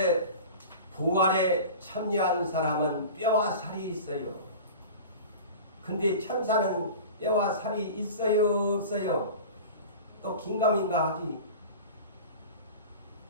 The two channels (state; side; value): inverted; both; correlation -0.35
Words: 부활에 참여한 사람은 뼈와 살이 있어요. 근데 천사는 뼈와 살이 있어요, 없어요? 또 긴가민가 하지.